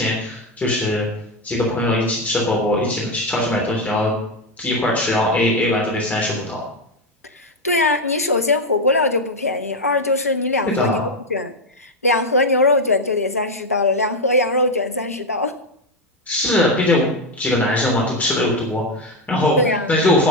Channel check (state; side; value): normal; both; correlation 0.08